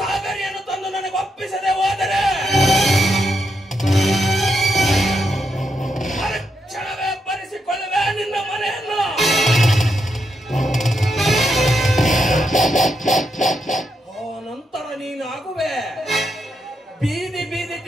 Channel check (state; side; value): normal; both; correlation 0.82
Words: ತಂದು ನನಗೆ ಒಪ್ಪಿಸದೆ ಹೋದರೆ ಮರುಕ್ಷಣವೇ ಬರೆಸಿಕೊಳ್ಳುವೆ ನಿನ್ನ ಮನೆಯನ್ನು. ನಂತರ ನೀನಾಗುವೆ ಬೀದಿ ಬೀದಿ